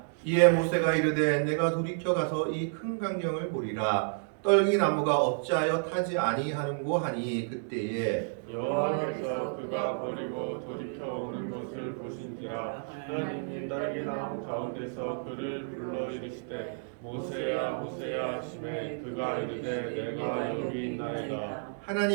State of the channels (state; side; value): silent; left; digital silence